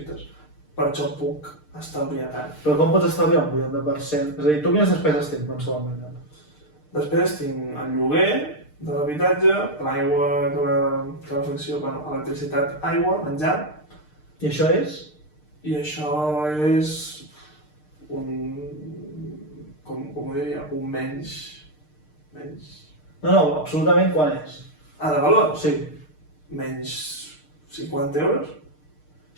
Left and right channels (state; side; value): late; right; 6.6 ms